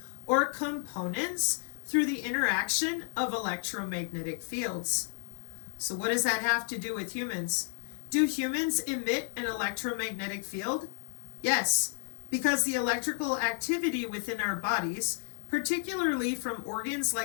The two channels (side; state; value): right; silent; 56 dB below the other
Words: or components through the interaction of electromagnetic fields. So what does that have to do with humans? Do humans emit an electromagnetic field? Yes, because the electrical activity within our bodies, particularly from organs